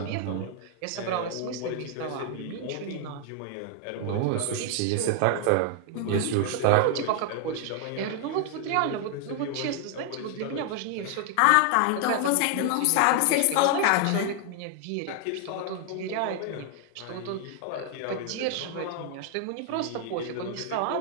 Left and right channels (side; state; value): both; different; correlation 0.00